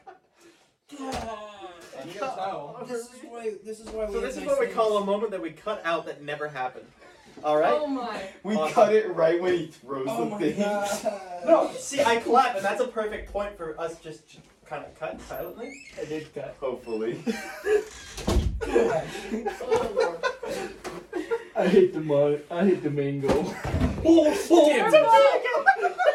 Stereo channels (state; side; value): identical; both; correlation 1.00